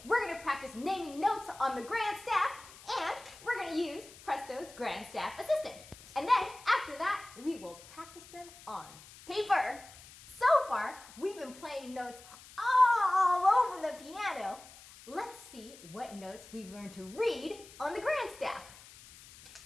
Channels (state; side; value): noise; left; hiss, 20 dB below the sound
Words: we're going to practice naming notes on the grand staff, and we're going to use Presto's grand staff assistant. And then, after that, we will practice them on paper. So far, we've been playing notes all over the piano. Let's see what notes we've learned to read on the grand staff.